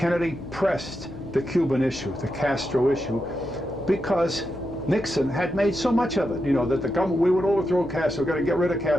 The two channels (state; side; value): noise; left; hum, 17 dB below the sound